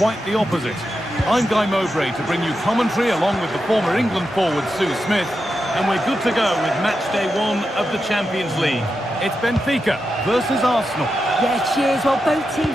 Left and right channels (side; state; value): both; normal; correlation 0.88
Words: the opposite. I'm Guy Mowbray to bring you commentary along with the former England forward Sue Smith, and we're good to go with match day 1 of the Champions League. It's Benfica versus Arsenal. Yeah, cheers. Well, both teams